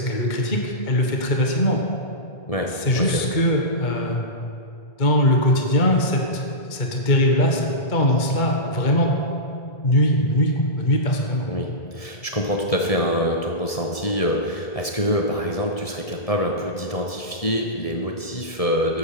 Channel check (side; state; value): right; late; 1.7 ms